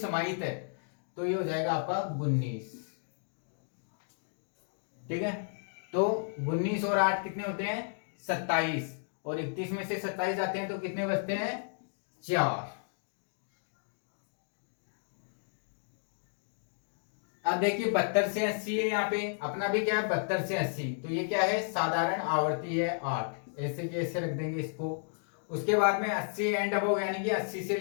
है, तो ये हो जाएगा आपका 19। ठीक है, तो 19 और 8 कितने होते हैं 27, और 31 में से 27 जाते हैं तो कितने बचते हैं 4। अब देखिए 72 से 80 है, यहाँ पे अपना भी क्या है 72 से 80, तो ये क्या है साधारण आवर्ती है 8, ऐसे के ऐसे रख देंगे इसको। उसके बाद में 80 एंड अबव, यानी कि 80 से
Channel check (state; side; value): silent; right; digital silence